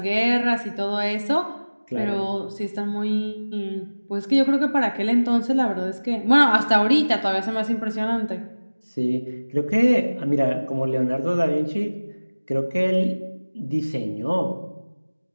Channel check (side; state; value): both; inverted; correlation -1.00